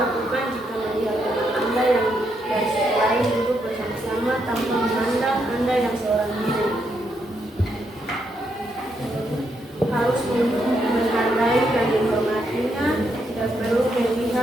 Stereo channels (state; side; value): normal; both; correlation 0.78